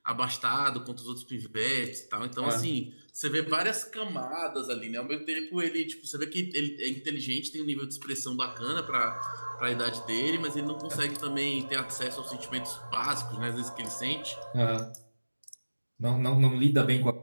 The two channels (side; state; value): both; inverted; correlation -1.00